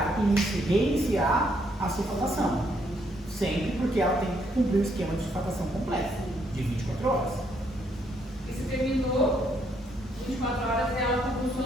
e reiniciar a sulfatação. Sempre porque ela tem que cumprir o esquema de sulfatação completo, de 24 horas. E se terminou 24 horas e ela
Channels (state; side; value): normal; both; correlation 0.72